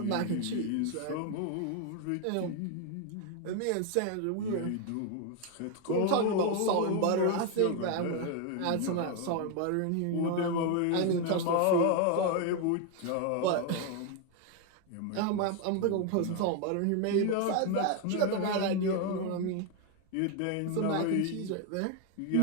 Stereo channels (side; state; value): both; different; correlation 0.01